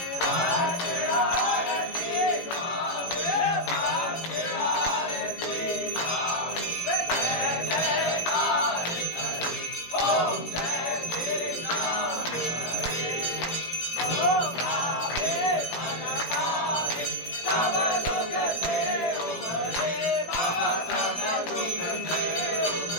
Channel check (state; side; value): late; right; 18 ms